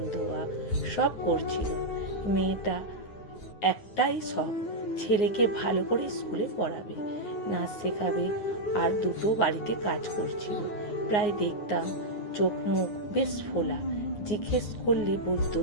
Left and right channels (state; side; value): late; right; 9.6 ms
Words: ধোয়া সব করছিল। মেয়েটা একটাই শখ, ছেলেকে ভালো করে স্কুলে পড়াবে, নাচ শেখাবে, আর দুটো বাড়িতে কাজ করছিল। প্রায় দেখতাম চোখ মুখ বেশ ফোলা, জিজ্ঞেস করলে বলতো